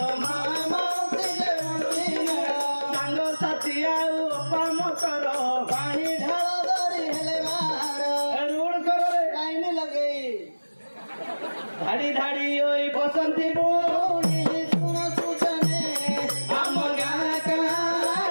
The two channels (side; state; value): both; inverted; correlation -1.00